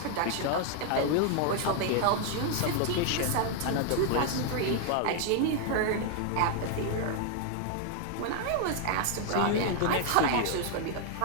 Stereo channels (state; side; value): different; both; correlation 0.00